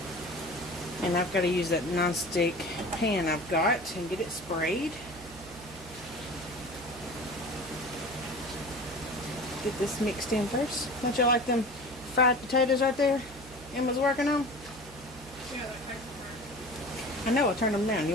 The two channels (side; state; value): right; noise; hum, 18 dB below the sound